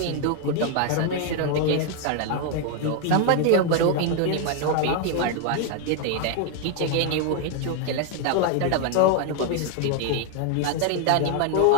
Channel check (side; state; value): both; different; correlation 0.01